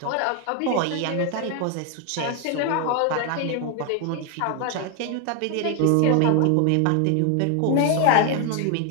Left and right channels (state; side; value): different; both; correlation 0.01